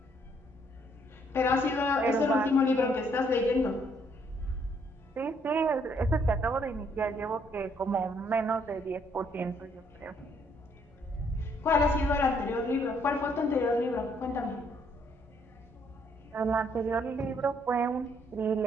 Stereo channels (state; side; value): normal; both; correlation 0.68